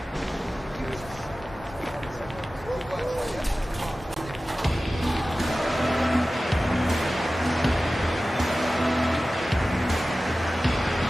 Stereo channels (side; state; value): both; normal; correlation 0.96